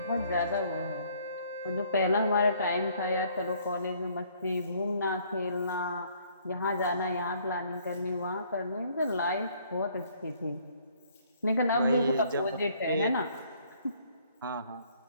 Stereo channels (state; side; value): inverted; both; correlation -0.62